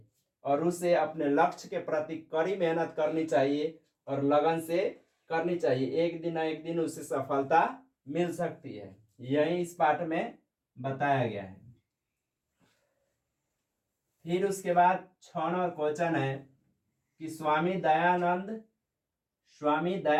और उसे अपने लक्ष्य के प्रति कड़ी मेहनत करनी चाहिए और लगन से करनी चाहिए। एक दिन ना एक दिन उसे सफलता मिल सकती है। यही इस पाठ में बताया गया है। फिर उसके बाद 6 नंबर क्वेश्चन है कि स्वामी दयानंद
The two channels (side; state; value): both; identical; correlation 1.00